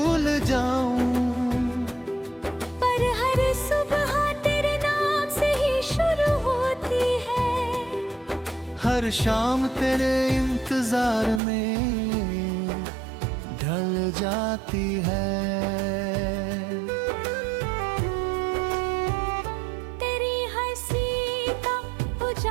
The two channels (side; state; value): left; drops out; at 11.4 s